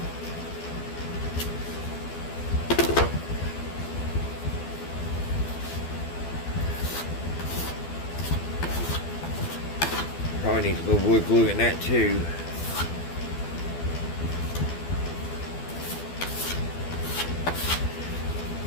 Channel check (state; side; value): late; right; 12 ms